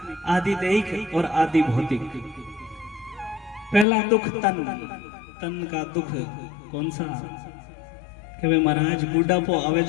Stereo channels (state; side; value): drops out; right; at 3.9 s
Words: आदि दैहिक और आदि भौतिक। पहला दुख तन का दुख कौन सा? कि वे महाराज बुढ़ापो आवे